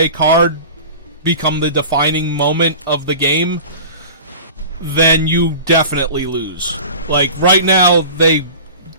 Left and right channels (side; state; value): both; inverted; correlation -0.37